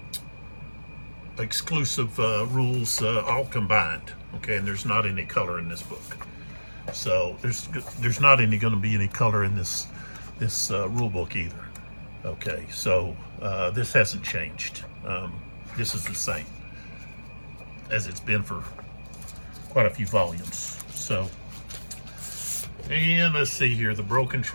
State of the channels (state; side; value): inverted; both; correlation -1.00